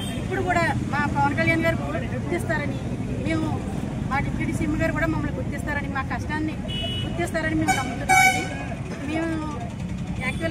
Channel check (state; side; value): identical; both; correlation 1.00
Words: ఇప్పుడు కూడా మా పవన్ కళ్యాణ్ గారు గుర్తిస్తారని, మేము మా డిప్యూటీ సీఎం గారు కూడా మమ్మల్ని గుర్తిస్తారని, మా కష్టాన్ని గుర్తిస్తారని మేము నమ్ముతున్నామండి. మేము